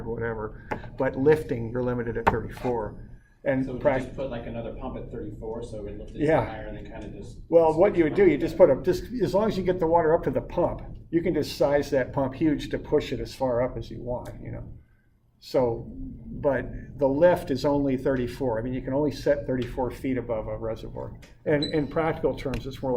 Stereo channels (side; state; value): both; identical; correlation 1.00